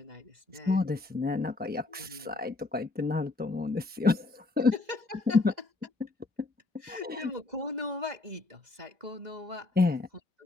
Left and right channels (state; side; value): quieter; right; 3.3 dB